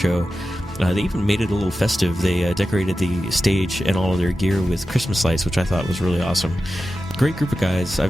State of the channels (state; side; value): normal; both; correlation 0.93